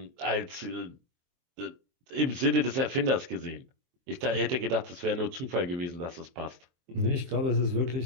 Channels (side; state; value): left; late; 23 ms